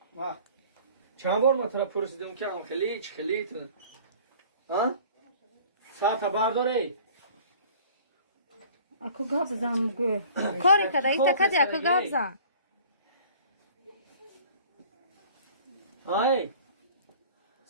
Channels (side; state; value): both; inverted; correlation -0.48